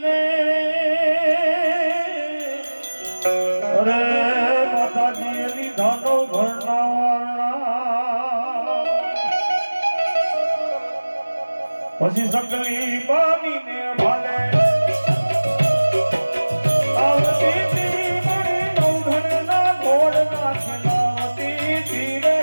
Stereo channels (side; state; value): both; inverted; correlation -1.00